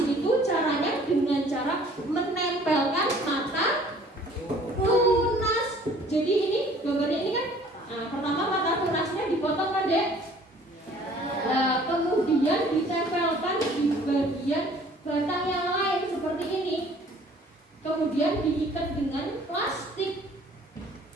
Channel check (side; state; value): both; normal; correlation 0.54